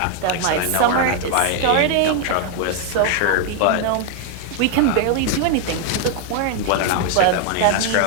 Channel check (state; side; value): different; both; correlation 0.00